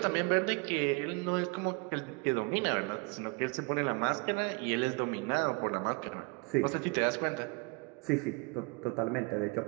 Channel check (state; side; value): quieter; left; 29.3 dB